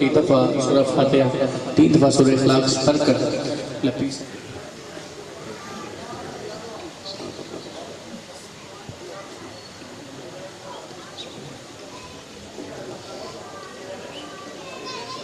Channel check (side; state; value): both; identical; correlation 1.00